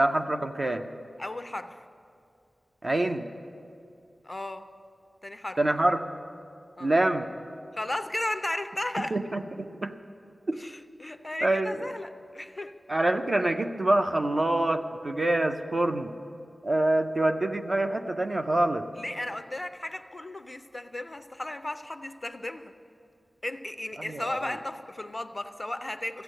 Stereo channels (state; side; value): normal; both; correlation 0.97